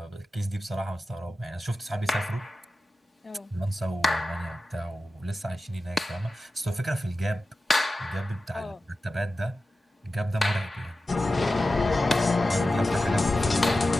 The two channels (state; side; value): normal; both; correlation 0.94